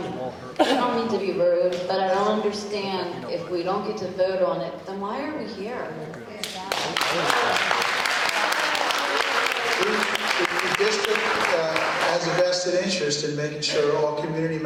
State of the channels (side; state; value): both; identical; correlation 1.00